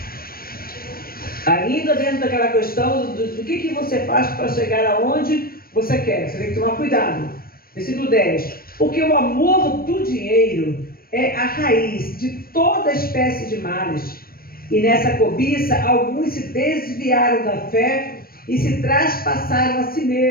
Ainda dentro daquela questão do que você faz para chegar aonde você quer. Você tem que tomar cuidado. Versículo 10. Porque o amor do dinheiro é a raiz de toda espécie de males. E nessa cobiça, alguns se desviaram da fé e se traspassaram a si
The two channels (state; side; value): late; right; 0.43 ms